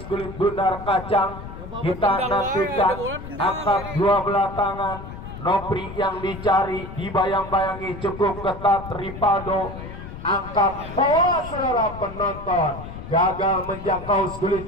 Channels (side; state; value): left; noise; rumble, 11 dB below the sound